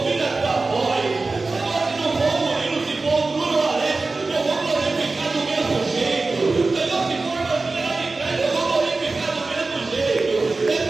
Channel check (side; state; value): left; quieter; 3.6 dB